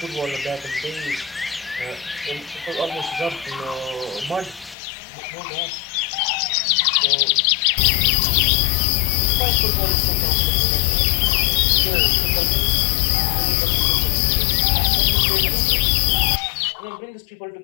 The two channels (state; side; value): drops out; right; at 4.8 s